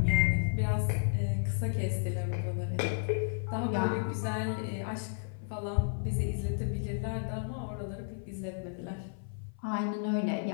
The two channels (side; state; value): right; silent; 56 dB below the other